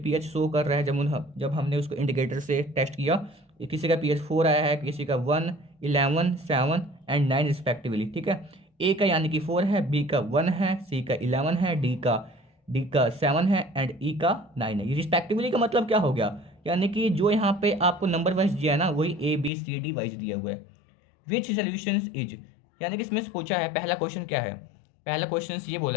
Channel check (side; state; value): right; drops out; at 19.5 s